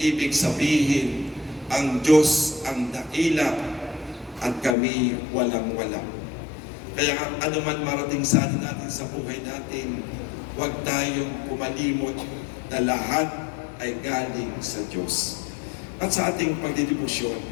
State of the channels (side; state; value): right; drops out; at 4.8 s